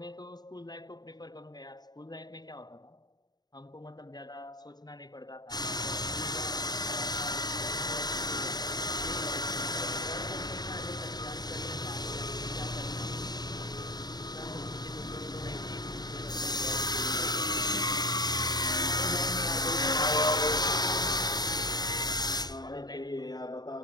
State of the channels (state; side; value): late; right; 0.20 ms